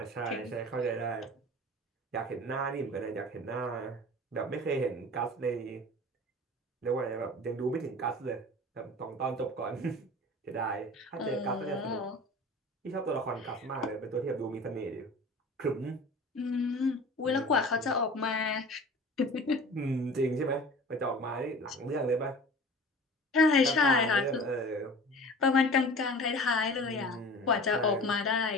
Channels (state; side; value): normal; both; correlation 0.40